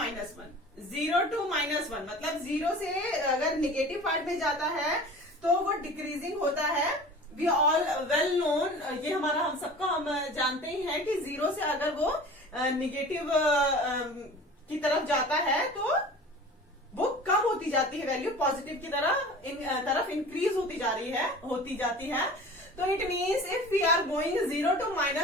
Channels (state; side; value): normal; both; correlation 0.40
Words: 0 to -1 मतलब 0 से अगर निगेटिव पार्ट में जाता है तो वो डिक्रीजिंग होता है. वी ऑल वेल नोन, ये हमारा हम सबका हम जानते ही हैं कि 0 से अगर वो निगेटिव की तरफ जाता है तो वो कम होती जाती है वैल्यू, पॉजिटिव की तरफ इंक्रीज होती जाती है. तो it means if we are going 0 to